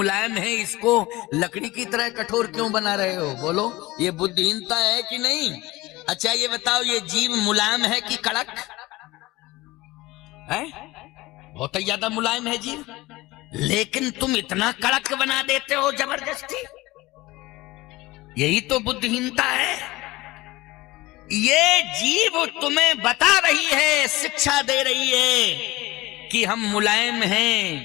है, इसको लकड़ी की तरह कठोर क्यों बना रहे हो? बोलो, ये बुद्धिहीनता है कि नहीं? अच्छा ये बताओ, ये जीव मुलायम है कि कड़क है? बहुत ही ज्यादा मुलायम है जीव, लेकिन तुम इतना कड़क बना देते हो जबरदस्ती। यही तो बुद्धिहीनता है। ये जीव तुम्हें बता रही है, शिक्षा दे रही है कि हम मुलायम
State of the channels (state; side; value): quieter; right; 19.5 dB